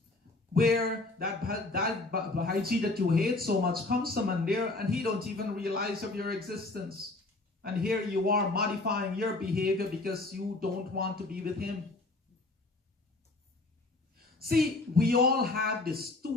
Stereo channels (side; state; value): right; quieter; 3.1 dB